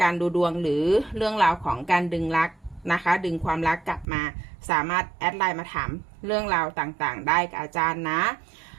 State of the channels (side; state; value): left; drops out; at 4.0 s